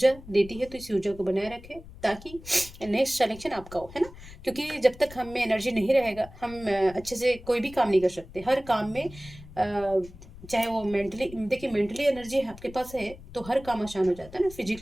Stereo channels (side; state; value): left; noise; rumble, 17 dB below the sound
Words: देती है। तो इस ऊर्जा को बनाए रखें ताकि नेक्स्ट सिलेक्शन आपका हो, है ना। क्योंकि जब तक हम में एनर्जी नहीं रहेगा हम अच्छे से कोई भी काम नहीं कर सकते। हर काम में चाहे वो मेंटली, देखिए मेंटली एनर्जी आपके पास है तो हर काम आसान हो जाता है ना।